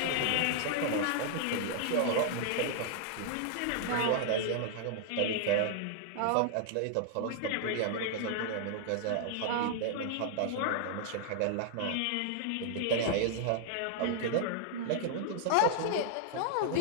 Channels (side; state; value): both; different; correlation 0.00